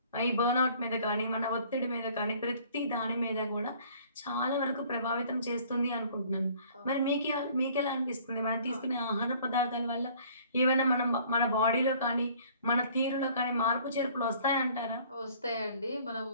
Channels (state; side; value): inverted; both; correlation -0.54